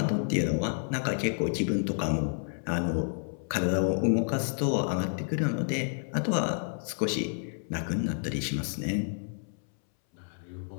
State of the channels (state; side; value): silent; right; 58 dB below the other